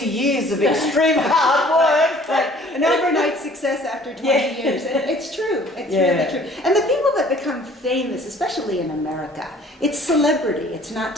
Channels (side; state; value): both; normal; correlation 0.53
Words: years of extreme hard work." Right. An overnight success after 20 Yeah. years. And it's true. It's Yeah. really true. And the people that become famous, especially in America, it's celebrity. It's not